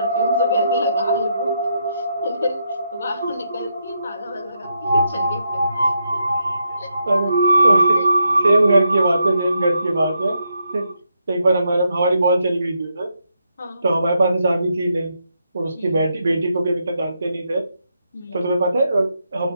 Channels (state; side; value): inverted; both; correlation -0.80